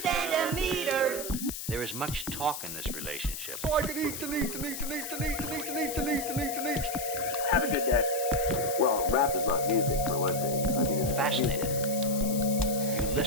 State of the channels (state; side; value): noise; left; hiss, 7 dB below the sound